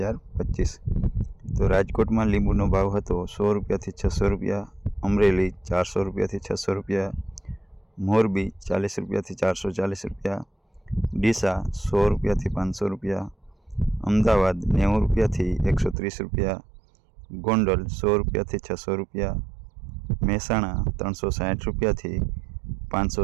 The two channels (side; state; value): left; drops out; at 16.0 s